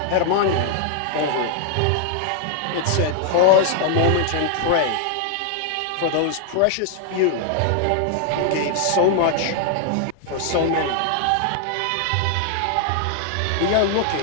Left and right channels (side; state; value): both; different; correlation 0.00